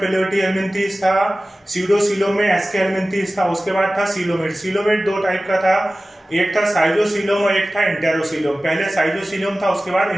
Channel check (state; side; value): normal; both; correlation 0.96